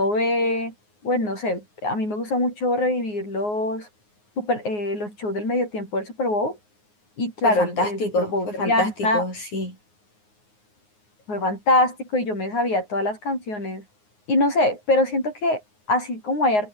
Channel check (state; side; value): late; right; 9.5 ms